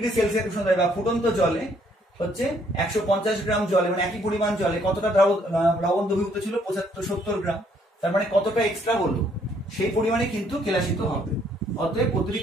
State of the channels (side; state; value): both; normal; correlation 0.66